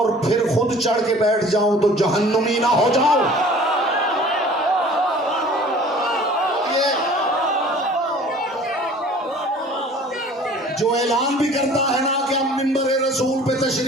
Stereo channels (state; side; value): normal; both; correlation 0.48